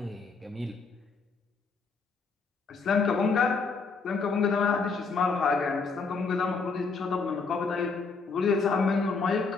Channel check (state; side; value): quieter; right; 4.7 dB